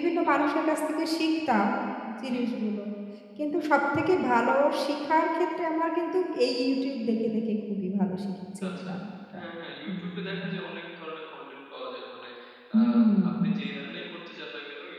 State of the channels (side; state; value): both; identical; correlation 1.00